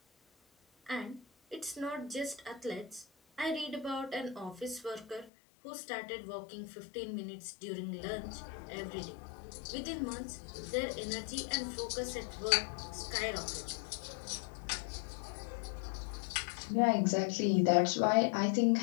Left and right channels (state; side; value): drops out; right; at 5.3 s